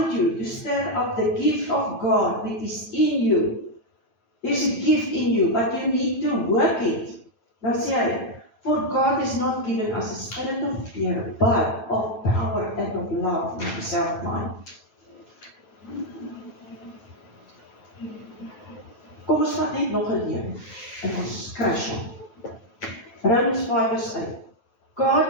you to stir up the gift of God which is in you. There's a gift in you, but you need to work it. Dan sê hy, for God has not given us a spirit of fear, but of power and of love and of self-mind. Kom ons vat net nog 'n leuen en ons crash hom. Romans 5 vers 8.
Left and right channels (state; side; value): late; right; 9.1 ms